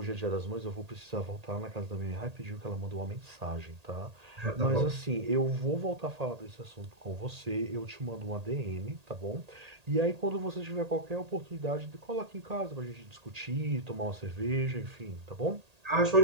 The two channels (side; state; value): left; late; 1.8 ms